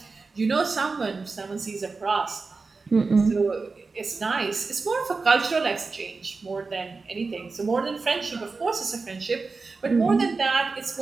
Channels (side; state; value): left; quieter; 4.2 dB